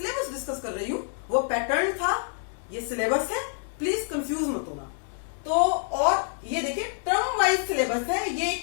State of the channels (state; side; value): silent; right; digital silence